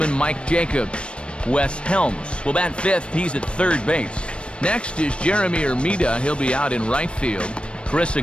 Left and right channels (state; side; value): late; right; 0.058 ms